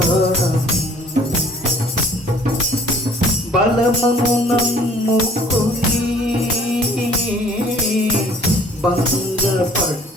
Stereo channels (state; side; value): normal; both; correlation 0.54